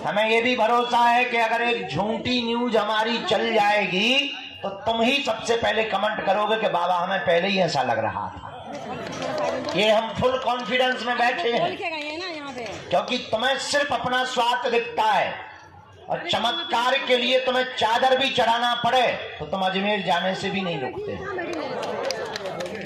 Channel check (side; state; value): both; identical; correlation 1.00